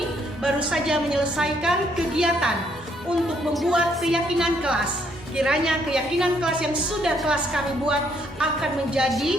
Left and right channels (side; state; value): both; normal; correlation 0.70